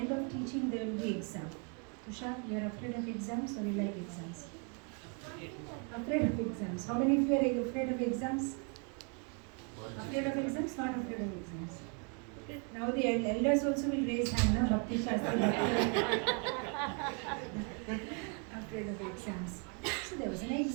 of teaching, there will be exam. Tushar, you are afraid of exams or you like exams? Afraid of exams. How many of you are afraid of exams? Afraid of exams? Not afraid of exams. Now the elders also will raise hand, na? Bhakti Shastri. Afraid of exams. So there was an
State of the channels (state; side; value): quieter; left; 36.8 dB